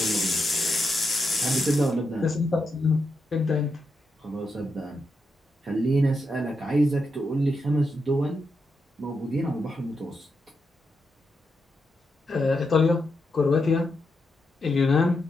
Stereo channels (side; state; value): both; normal; correlation 0.84